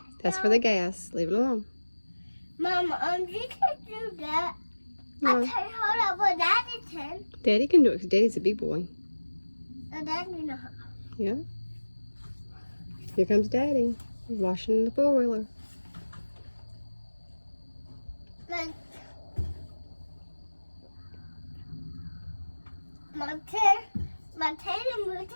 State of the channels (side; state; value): both; inverted; correlation -1.00